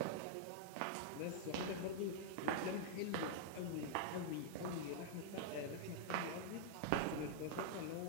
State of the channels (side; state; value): both; different; correlation -0.01